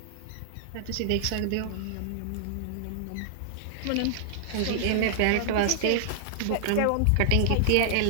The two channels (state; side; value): different; both; correlation -0.01